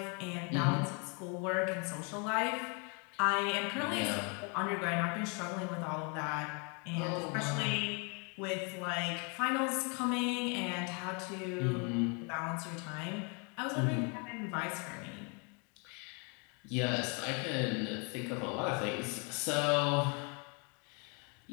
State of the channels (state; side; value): quieter; right; 34.8 dB